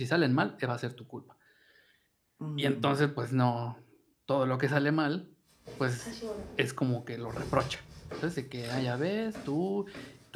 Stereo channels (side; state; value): both; identical; correlation 1.00